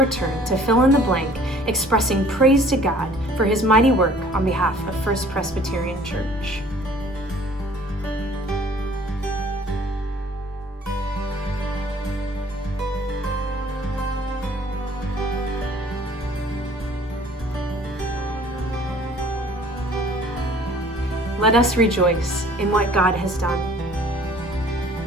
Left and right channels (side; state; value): both; normal; correlation 0.53